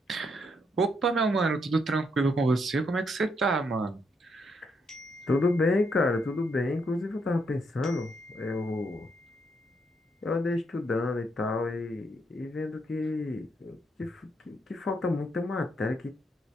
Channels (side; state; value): both; normal; correlation 0.76